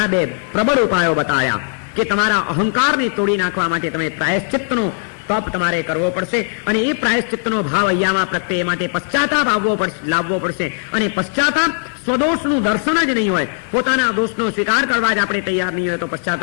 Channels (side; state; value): right; silent; 60 dB below the other